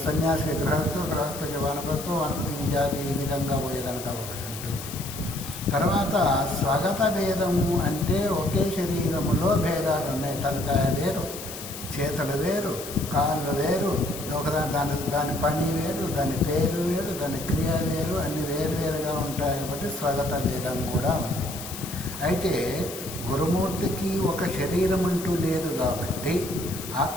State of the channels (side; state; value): left; noise; hiss, 10 dB below the sound